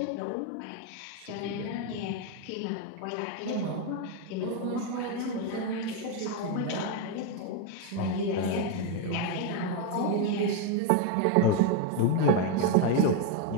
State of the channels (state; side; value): different; both; correlation 0.02